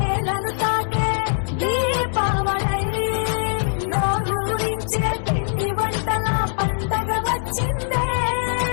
తాకే దీపావళి, నోరూరించే పిండి వంటల పండగ వచ్చిందే.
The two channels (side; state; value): right; silent; 63 dB below the other